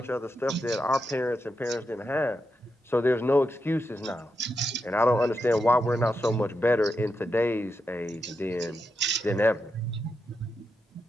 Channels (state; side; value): normal; both; correlation 0.86